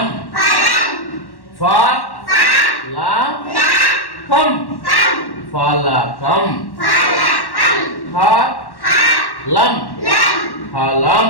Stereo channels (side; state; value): right; late; 1.1 ms